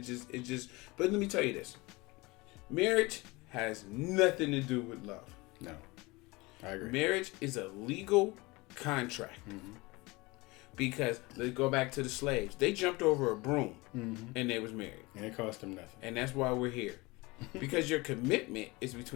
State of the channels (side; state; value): right; quieter; 23.6 dB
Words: just. But let me tell you this: marriage has nothing to do with love. No, I agree. Marriage is a legal contract. Because let's go back to the slaves. They jumped over a broom and they was married. And it cost them nothing. And that's why we're here. Because your commitment is